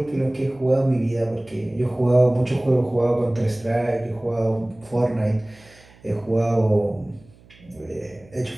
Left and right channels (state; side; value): noise; right; hum, 26 dB below the sound